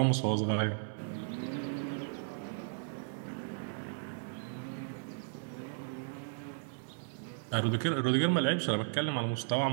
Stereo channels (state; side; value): silent; left; digital silence